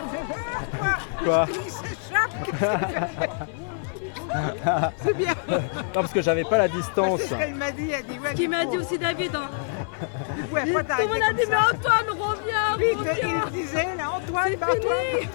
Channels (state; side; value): silent; right; 56 dB below the other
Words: Quoi? C'est bien. Non, parce que j'avais pas la distance. C'est ce qu'elle m'a dit, elle dit ouais. Ce qu'il m'a dit aussi David. Hein. Du coup, après, Tout le monde a dit, mais Antoine, reviens, Vite, reviens. il disait, là, Antoine, C'est bah, fini.